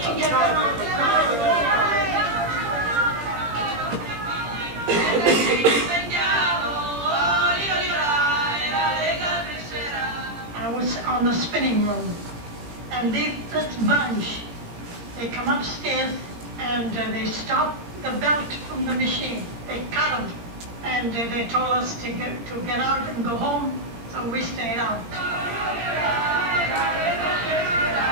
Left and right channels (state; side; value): late; left; 17 ms